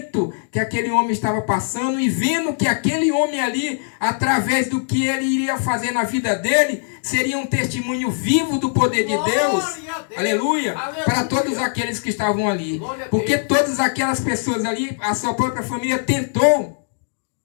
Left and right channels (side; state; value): right; silent; digital silence